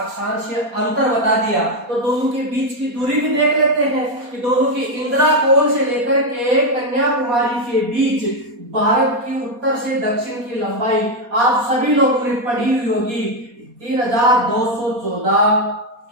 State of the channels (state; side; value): late; left; 4.2 ms